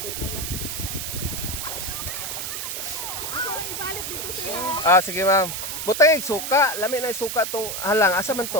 Ibalik dito siya. Sige ma'am. Butay suka, lami na suka tong halang. Asa man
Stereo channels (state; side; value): noise; right; hiss, 4 dB below the sound